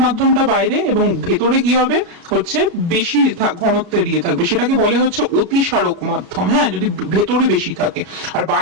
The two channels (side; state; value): left; late; 33 ms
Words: মাধ্যমটা বাইরে এবং ভেতরে কি হবে হচ্ছে বেশি ঘনত্বের ইয়ে থাকবে, সেটাকে বলে হচ্ছে অতিসারক মাধ্যম। হ্যাঁ, যদি ভেতরে বেশি থাকে, আর